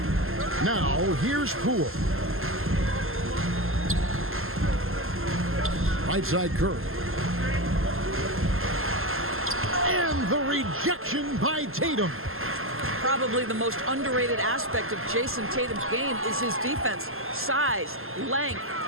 Now, here's Poole. Right side Curry. And the rejection by Tatum. Probably the most underrated aspect of Jason Tatum's game is his defense. Size, length,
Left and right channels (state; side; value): late; left; 0.61 ms